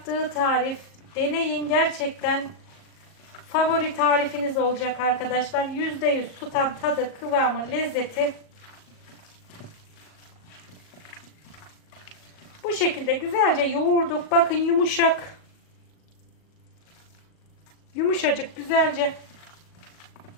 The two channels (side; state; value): right; late; 38 ms